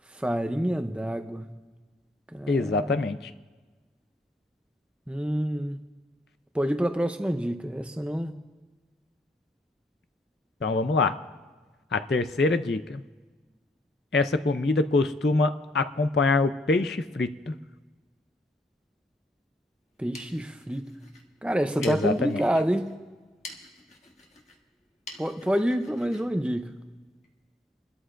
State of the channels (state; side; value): normal; both; correlation 0.71